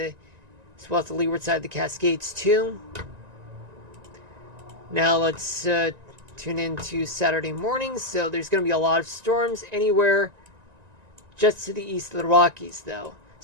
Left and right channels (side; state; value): left; late; 1.9 ms